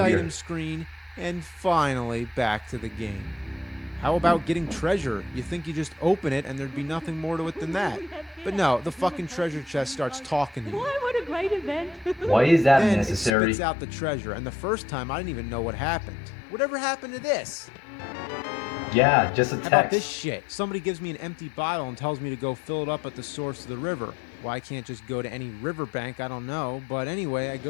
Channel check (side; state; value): right; drops out; at 13.3 s